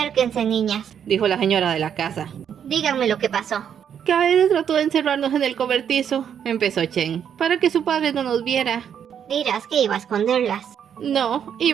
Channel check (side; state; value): left; quieter; 8.5 dB